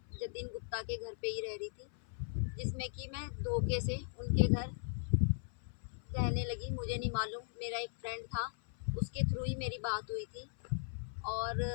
जतिन गुप्ता के घर पे ही रह रही थी, जिसमें कि मैं धोखे से उनके घर रहने लगी। मुझे नहीं मालूम, मेरा एक फ्रेंड था, उसके थ्रू ही मेरी बात हुई थी। और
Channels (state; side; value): silent; right; 52 dB below the other